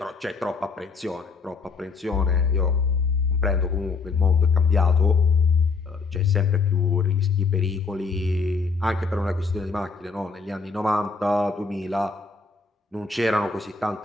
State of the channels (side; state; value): right; quieter; 4.5 dB